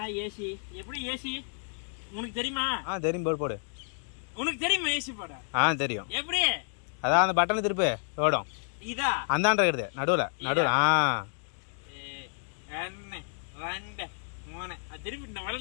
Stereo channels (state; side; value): silent; right; 58 dB below the other